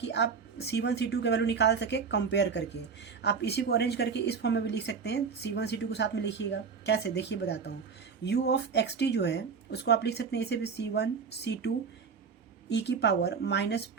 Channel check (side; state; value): left; quieter; 5.8 dB